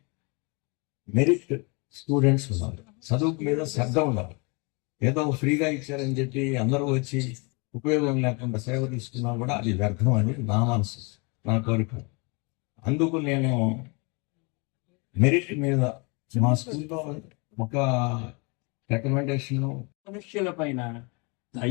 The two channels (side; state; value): right; quieter; 30.8 dB